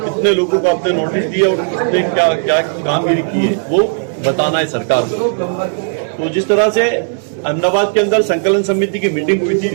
लोगों को आपने नोटिस दिया और किसने क्या क्या कामगिरी की है वो बताना है सरकार को। तो जिस तरह से अहमदाबाद के अंदर संकलन समिति की मीटिंग हुई थी,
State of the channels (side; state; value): left; silent; digital silence